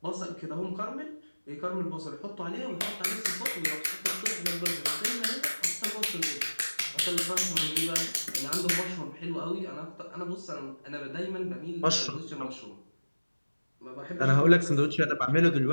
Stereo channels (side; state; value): both; inverted; correlation -1.00